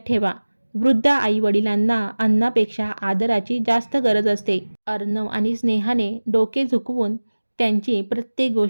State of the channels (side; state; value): both; inverted; correlation -1.00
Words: ठेवा, वृद्ध आईवडिलांना अन्नापेक्षा आदराची जास्त गरज असते. अर्णव आणि स्नेहाने डोके झुकवून त्यांची प्रत्येक